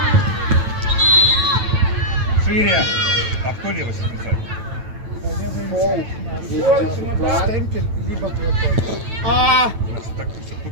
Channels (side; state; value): left; late; 9.1 ms